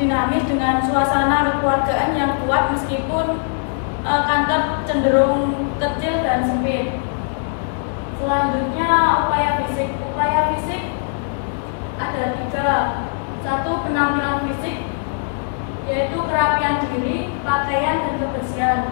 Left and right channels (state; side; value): silent; right; digital silence